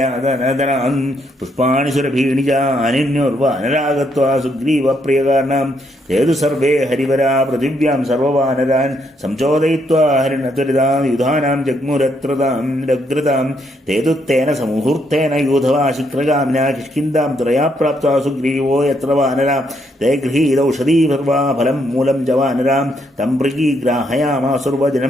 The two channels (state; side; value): normal; both; correlation 0.75